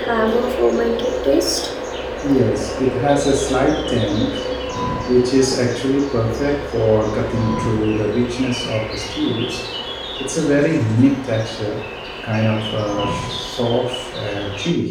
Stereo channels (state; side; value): identical; both; correlation 1.00